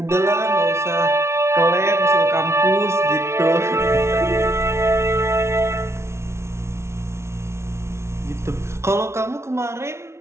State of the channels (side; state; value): left; late; 0.13 ms